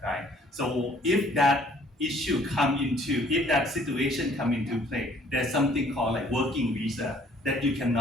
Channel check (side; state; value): both; normal; correlation 0.59